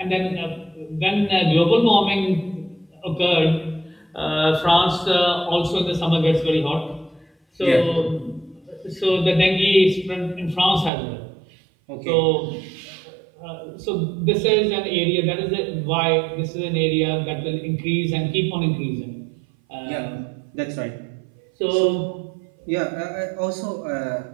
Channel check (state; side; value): drops out; left; at 10.9 s